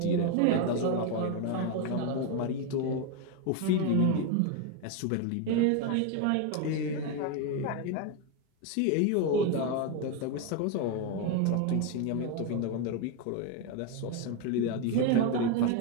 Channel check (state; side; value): different; both; correlation 0.02